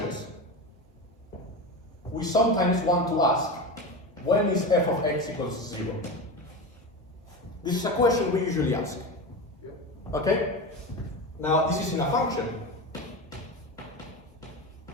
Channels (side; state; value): both; normal; correlation 0.24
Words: we sometimes want to ask, when is f of x equals 0? This is a question we usually ask. Okay? Now, this is in a function.